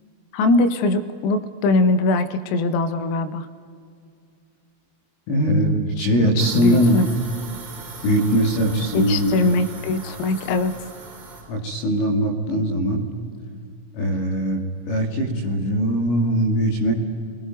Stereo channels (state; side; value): late; right; 25 ms